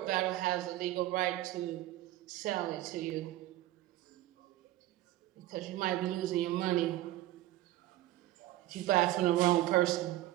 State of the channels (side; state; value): left; quieter; 15.6 dB